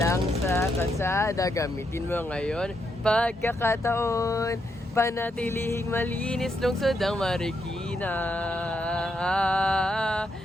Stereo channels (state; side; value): normal; both; correlation 0.79